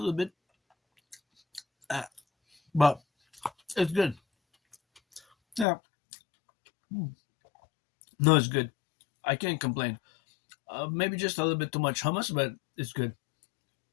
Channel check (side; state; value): right; drops out; at 5.7 s